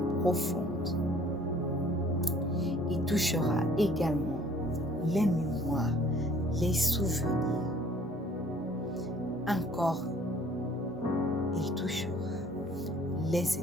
profondes. Il touchera également les mémoires, les souvenirs. Encore, il touchera les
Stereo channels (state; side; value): normal; both; correlation 0.56